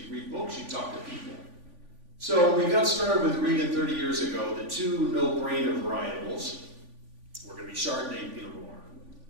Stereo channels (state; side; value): late; left; 3.5 ms